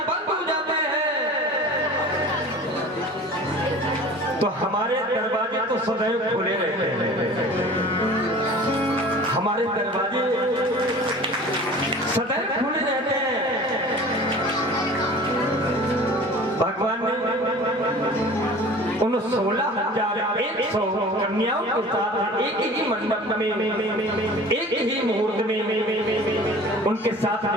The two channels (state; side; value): normal; both; correlation 0.42